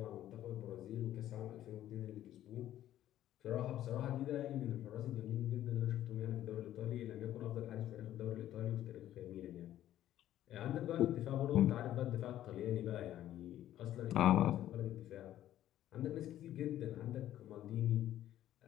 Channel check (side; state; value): right; quieter; 12.6 dB